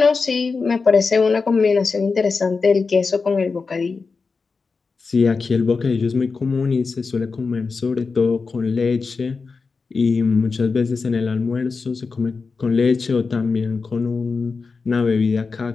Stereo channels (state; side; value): quieter; right; 4.6 dB